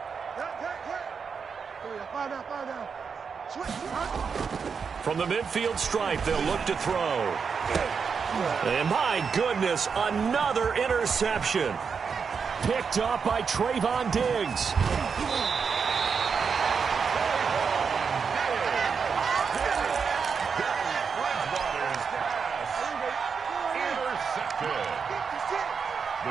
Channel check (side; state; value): left; quieter; 5.9 dB